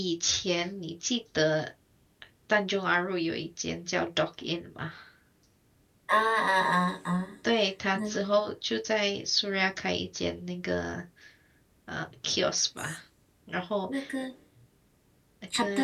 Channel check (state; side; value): identical; both; correlation 1.00